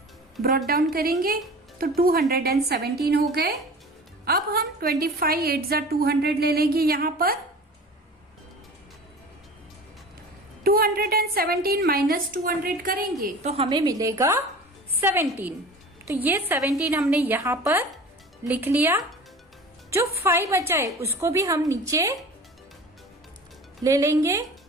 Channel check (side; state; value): both; normal; correlation 0.39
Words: ब्रॉट डाउन करेंगे, तो 217 हो गए। अब हम 25 8 जा 200 ले लेंगे, यहाँ पर 217 माइनस 200 करेंगे तो हमें मिलेगा 17। तो ये 17 हमने यहाँ पर लिख लिया। जो 5 बचा है उसको भी हम नीचे ले लेंगे,